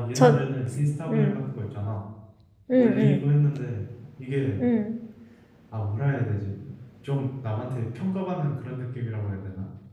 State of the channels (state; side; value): identical; both; correlation 1.00